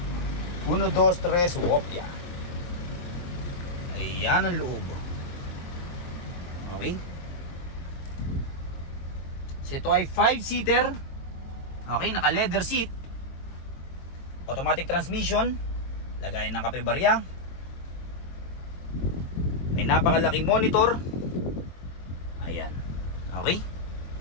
1, 2, 3, Wopia. Ayan ang loob. Okay. So ito ay 5-seater. Okay, naka leather seat. Automatic transmission. Lagayan ng kape barya. May napakalaking monitor. Ayan. Okay.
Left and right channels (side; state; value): right; late; 23 ms